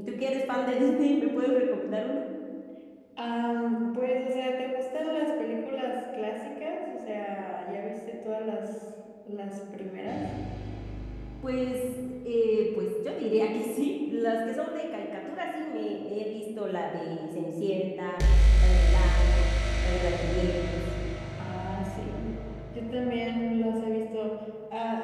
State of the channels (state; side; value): identical; both; correlation 1.00